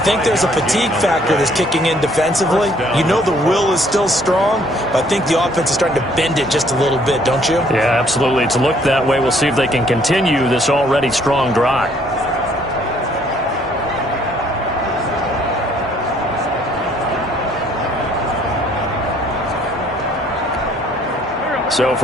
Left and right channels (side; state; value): both; normal; correlation 0.63